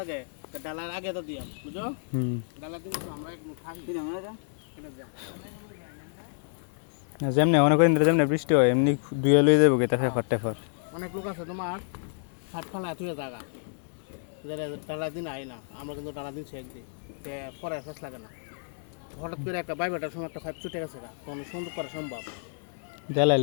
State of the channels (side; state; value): right; silent; 58 dB below the other